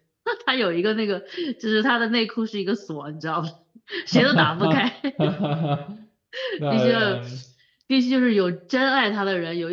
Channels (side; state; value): both; identical; correlation 1.00